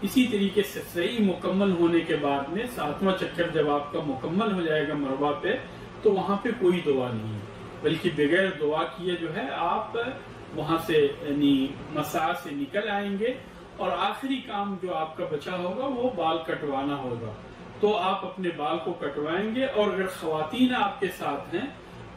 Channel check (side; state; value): both; identical; correlation 1.00